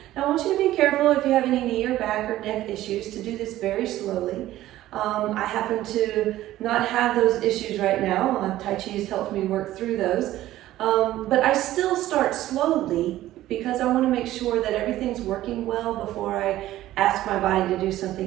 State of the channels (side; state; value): left; quieter; 14.7 dB